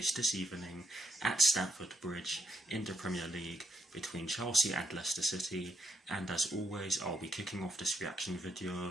this evening at Stamford Bridge in the Premier League between Chelsea and Leicester City, and as always I'll be kicking off this reaction video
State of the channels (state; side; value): normal; both; correlation 0.79